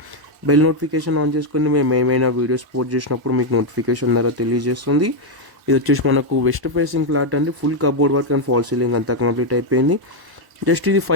బెల్ నోటిఫికేషన్ ఆన్ చేసుకొని మేము ఏమైనా వీడియోస్ పోస్ట్ చేసినప్పుడు మీకు నోటిఫికేషన్ ద్వారా తెలియజేస్తుంది. ఇది వచ్చేసి మనకు వెస్ట్ ఫేసింగ్ ఫ్లాట్ అండి. Full cupboard work and fall ceiling అంతా కంప్లీట్ అయిపోయింది. జస్ట్ ఇది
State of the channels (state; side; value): late; left; 1.0 ms